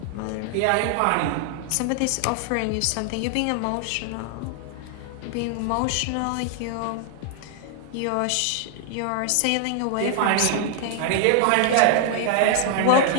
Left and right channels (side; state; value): both; different; correlation 0.00